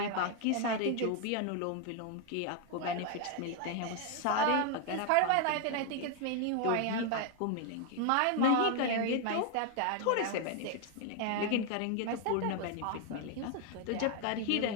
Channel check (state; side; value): different; both; correlation 0.00